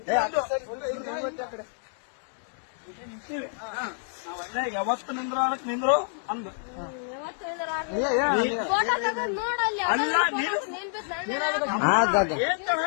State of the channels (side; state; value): right; silent; digital silence